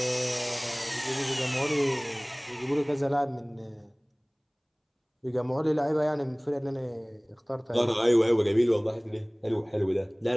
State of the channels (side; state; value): both; identical; correlation 1.00